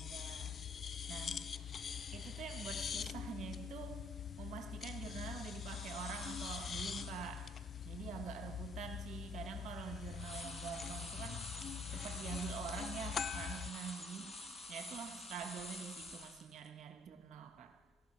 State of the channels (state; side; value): normal; both; correlation 0.63